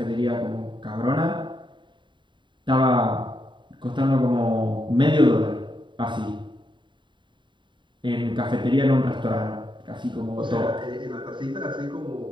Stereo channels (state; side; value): late; left; 0.23 ms